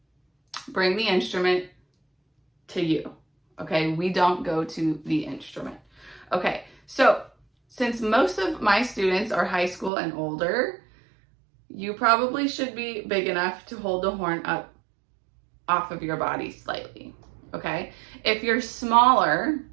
bring the instrument to you. Okay, we don't go to the instrument. Okay, so since most of my students are high school and older, you probably should be big enough to hold the horn up off of your body slightly. Okay, if you're smaller,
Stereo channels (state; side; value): drops out; left; at 9.9 s